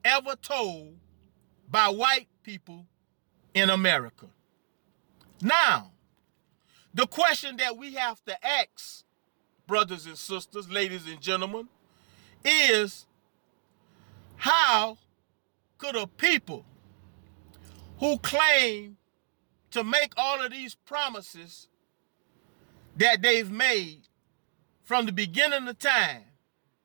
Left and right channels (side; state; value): left; silent; digital silence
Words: ever told by white people in America. Now, the question that we have to ask, brothers and sisters, ladies and gentlemen, is how could a people who claim to make all of these promises that they've made from the beginning of time